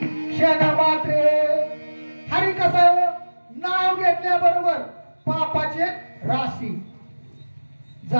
क्षण मात्रे. हरी कसं नाव घेतल्याबरोबर पापाचे राशी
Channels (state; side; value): inverted; both; correlation -1.00